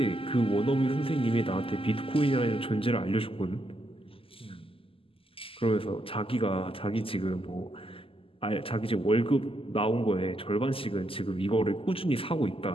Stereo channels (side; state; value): right; late; 0.26 ms